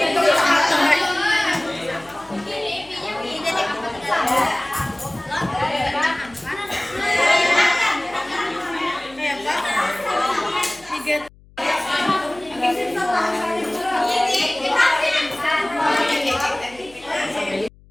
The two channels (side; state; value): left; noise; hum, 26 dB below the sound